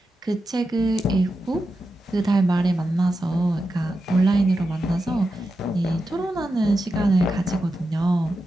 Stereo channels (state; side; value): normal; both; correlation 0.89